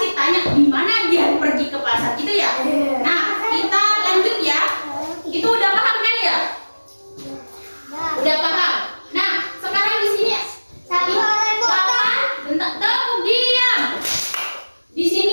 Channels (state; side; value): inverted; both; correlation -1.00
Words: tanya di mana dia pergi ke pasar gitu ya. Nah, kita lanjut ya. Itu udah paham kan ya? Udah paham. Nah, sekarang di sini kapan? Bentar, tepuk diam. Di